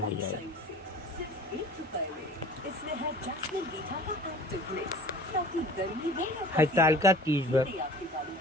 जाए। हरतालिका तीज व्रत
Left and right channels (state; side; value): normal; both; correlation 0.43